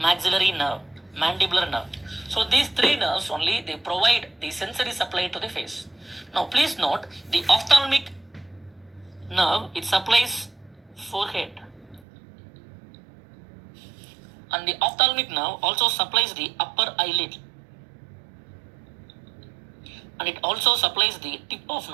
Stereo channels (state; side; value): drops out; left; at 12.0 s